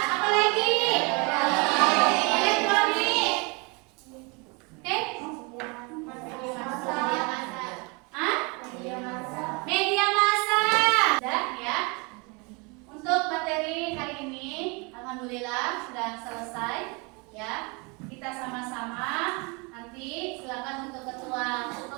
Apa lagi? Elektronik. Oke? Hah? Media massa. Sudah ya. Untuk materi hari ini, alhamdulillah sudah selesai ya. Kita sama-sama nanti silakan untuk ketua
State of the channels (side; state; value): left; quieter; 30.2 dB